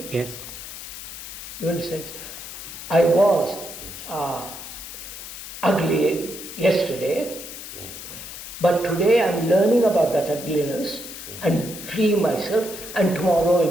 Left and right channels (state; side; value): noise; left; hiss, 11 dB below the sound